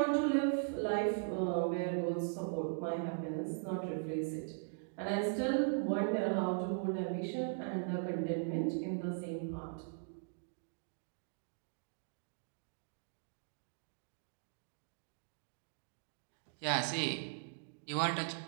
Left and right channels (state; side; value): silent; left; digital silence